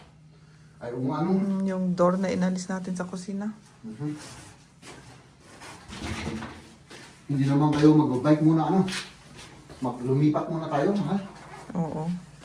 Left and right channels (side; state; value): both; identical; correlation 1.00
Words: ay umano. Yung door na inalis natin sa kusina. Hindi naman kayo mag-bike muna ano. Lumipat muna tayo, ha? Oo.